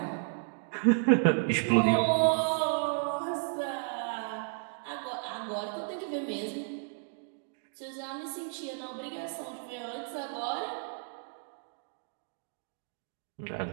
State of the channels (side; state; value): left; silent; digital silence